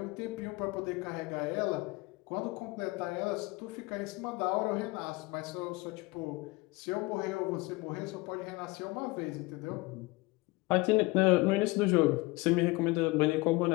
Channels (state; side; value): quieter; right; 23.2 dB